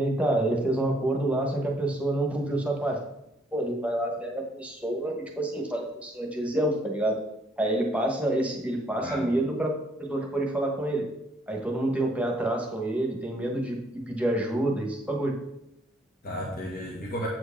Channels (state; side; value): normal; both; correlation 0.66